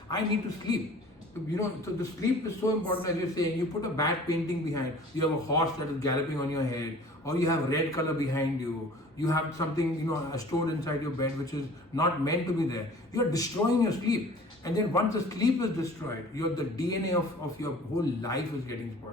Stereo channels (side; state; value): both; normal; correlation 0.47